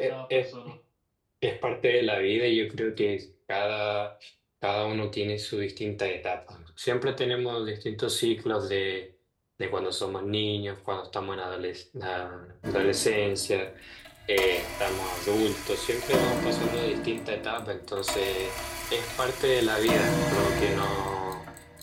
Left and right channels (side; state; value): both; identical; correlation 1.00